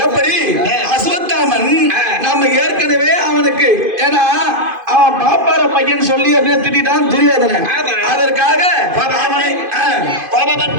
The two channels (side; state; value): left; late; 2.5 ms